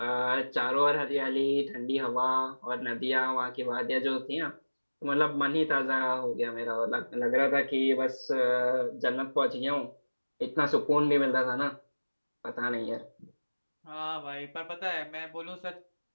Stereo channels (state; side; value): inverted; both; correlation -1.00